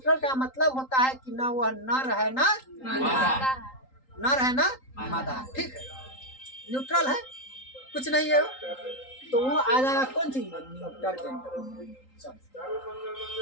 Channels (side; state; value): right; late; 3.8 ms